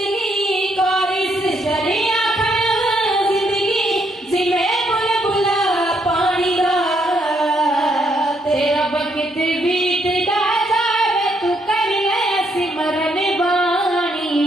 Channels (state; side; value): normal; both; correlation 0.74